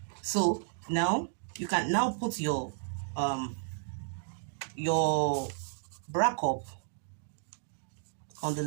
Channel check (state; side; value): silent; left; digital silence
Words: So now you can now put your bra cup on the